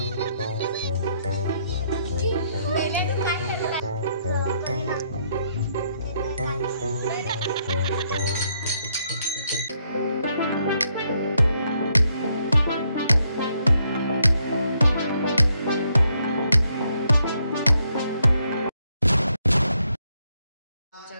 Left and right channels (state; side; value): inverted; both; correlation -0.74